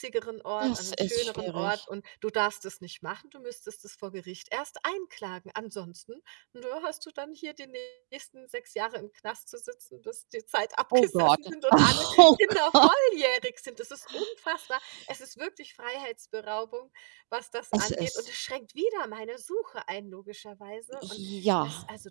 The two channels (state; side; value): silent; left; digital silence